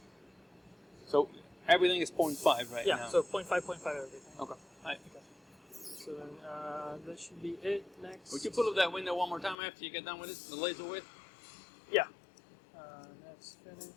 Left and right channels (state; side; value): drops out; right; at 9.6 s